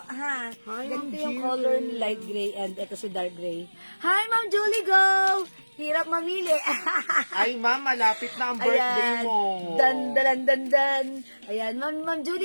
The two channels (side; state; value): both; inverted; correlation -1.00